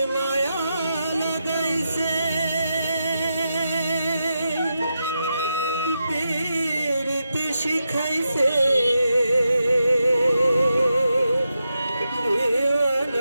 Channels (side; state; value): both; inverted; correlation -0.87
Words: মায়া লাগাইছে পীরতি শিখাইছে